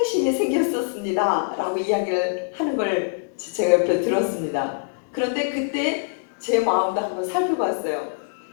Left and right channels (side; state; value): right; silent; digital silence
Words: 생겼었습니다 라고 이야기를 하는 걸 제가 옆에 들었습니다. 그런데 그때 제 마음도 한번 살펴봤어요.